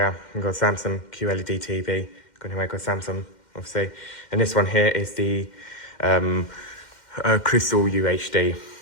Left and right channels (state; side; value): late; right; 2.1 ms